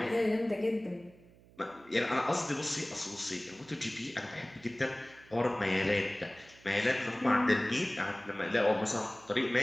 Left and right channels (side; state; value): right; noise; hum, 25 dB below the sound